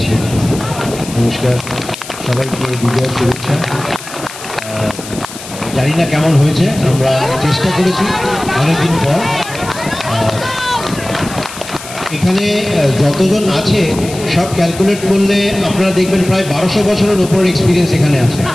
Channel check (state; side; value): noise; left; hiss, 13 dB below the sound